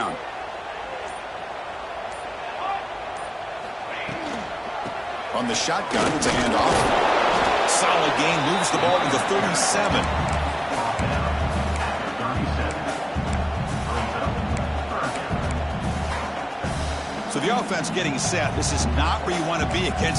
On the shotgun, it's a handoff. Solid gain, moves the ball to the 37. So the offense getting set. This is not where you want to be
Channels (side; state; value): both; identical; correlation 1.00